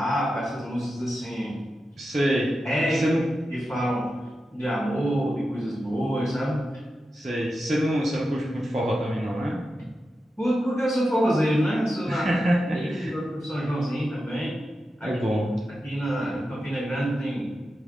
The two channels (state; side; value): normal; both; correlation 0.90